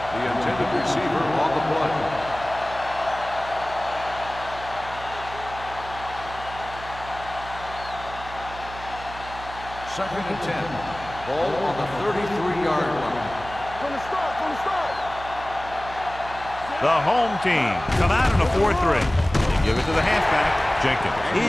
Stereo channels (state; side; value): noise; right; hum, 14 dB below the sound